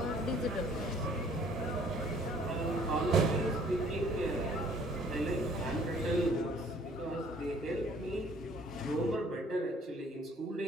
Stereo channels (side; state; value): both; normal; correlation 0.57